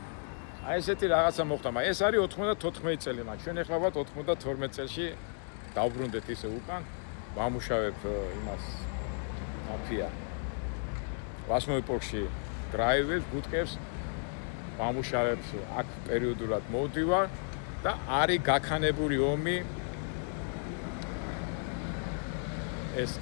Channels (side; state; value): right; silent; 56 dB below the other